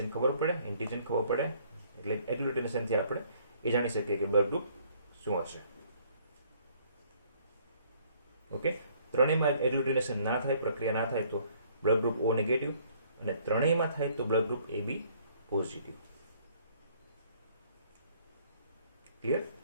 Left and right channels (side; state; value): both; inverted; correlation -0.61